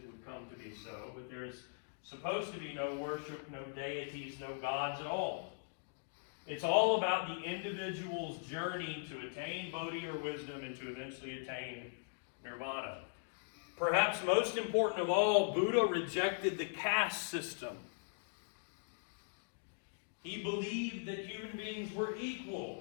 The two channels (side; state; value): right; silent; digital silence